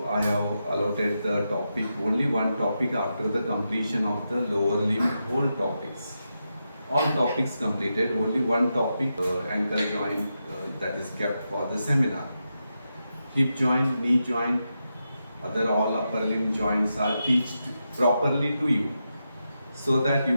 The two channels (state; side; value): inverted; both; correlation -0.87